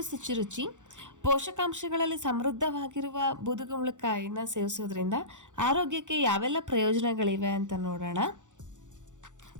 ಶುಚಿರುಚಿ. ಪೋಷಕಾಂಶಗಳಲ್ಲಿ ಸಮೃದ್ಧವಾಗಿರುವ ಬೂದುಗುಂಬಳಕಾಯಿನ ಸೇವಿಸೋದ್ರಿಂದ ಆರೋಗ್ಯಕ್ಕೆ ಯಾವೆಲ್ಲ ಪ್ರಯೋಜನಗಳಿವೆ ಅಂತ ನೋಡೋಣ.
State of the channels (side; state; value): left; late; 0.86 ms